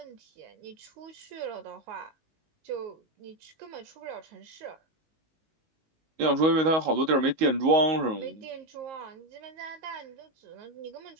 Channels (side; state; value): left; late; 19 ms